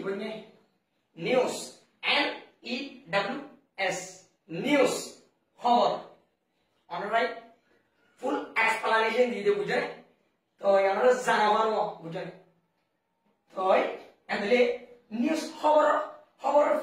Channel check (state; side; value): identical; both; correlation 1.00